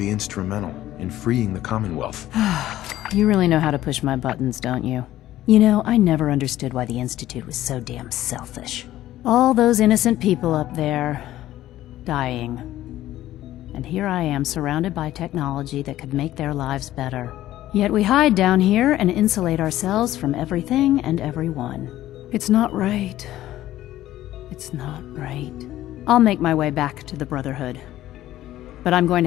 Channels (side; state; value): right; quieter; 14.2 dB